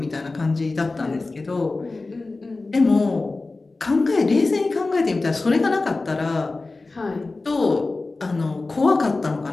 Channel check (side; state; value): right; quieter; 3.4 dB